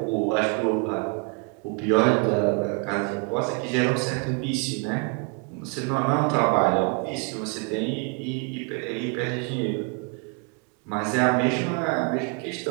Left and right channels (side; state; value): left; quieter; 34.9 dB